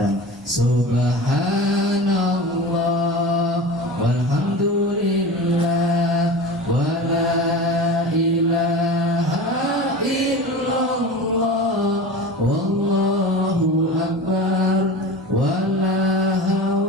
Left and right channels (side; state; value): both; normal; correlation 0.32